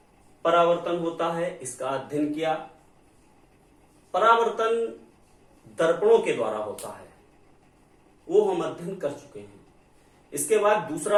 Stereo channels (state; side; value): identical; both; correlation 1.00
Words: परावर्तन होता है इसका अध्ययन किया। परावर्तन दर्पणों के द्वारा होता है वो हम अध्ययन कर चुके हैं। इसके बाद